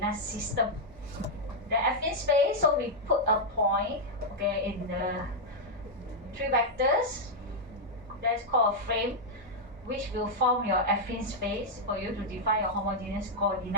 system. The affine space, so we put a point, okay, in the 3 vectors. That's called a frame, which will form your affine space for you to define your homogeneous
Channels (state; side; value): normal; both; correlation -0.03